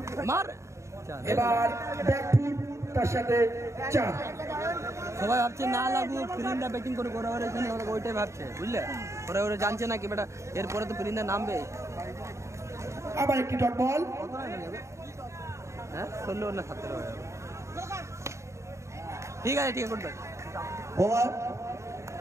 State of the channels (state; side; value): late; left; 0.14 ms